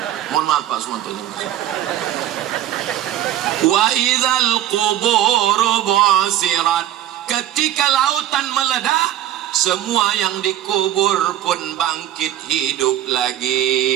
Mohon maaf Pak Sumanto. Wa idzal quburu bu'sirat, ketika lautan meledak, semua yang dikubur pun bangkit hidup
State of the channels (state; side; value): quieter; left; 12.2 dB